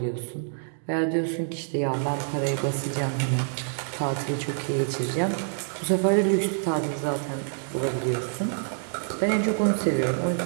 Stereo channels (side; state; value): left; silent; digital silence